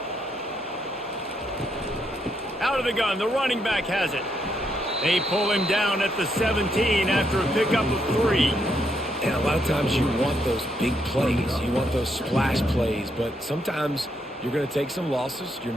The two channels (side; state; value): both; normal; correlation 0.77